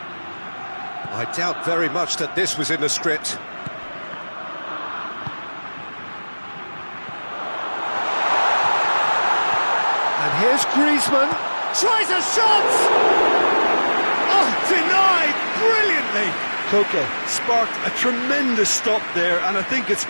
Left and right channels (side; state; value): both; inverted; correlation -1.00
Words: I doubt very much that this was in the script. And here's Griezmann, tries a shot! Oh, denied brilliantly! Koke sparked a tremendous stop there, and I think it's